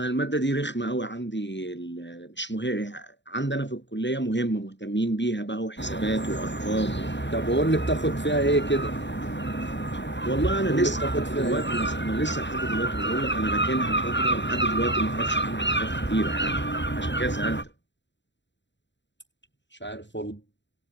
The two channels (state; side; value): late; right; 0.52 ms